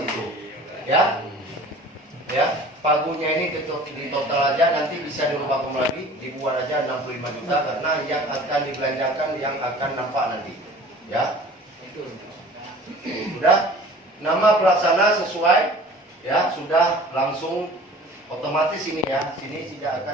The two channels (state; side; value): normal; both; correlation 0.45